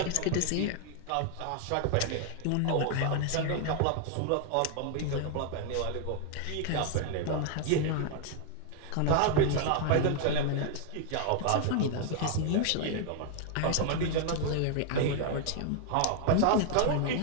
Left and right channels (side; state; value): both; different; correlation 0.00